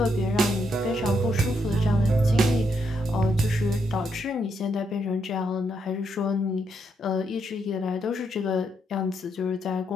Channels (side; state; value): both; normal; correlation 0.78